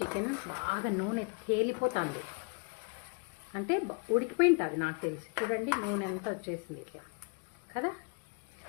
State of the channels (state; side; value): quieter; right; 36.7 dB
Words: బాగా నూనె తేలిపోతుంది, అంటే ఉడికిపోయి ఉంటుంది నాకు తెలిసి. చూడండి నూనె అంతా వచ్చేసింది ఇట్లా కదా.